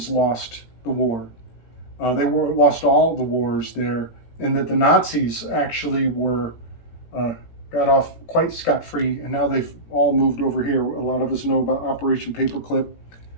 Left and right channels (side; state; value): right; late; 17 ms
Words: lost the war. They lost all the wars there, and that the Nazis actually got off quite scot-free, and now they've all moved over here. A lot of us know about Operation Paperclip,